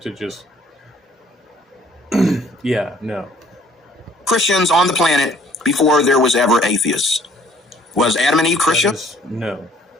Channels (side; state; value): both; normal; correlation 0.58